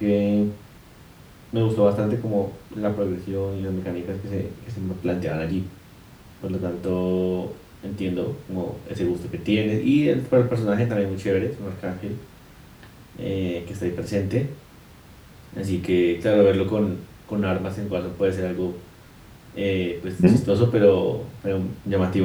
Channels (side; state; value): both; identical; correlation 1.00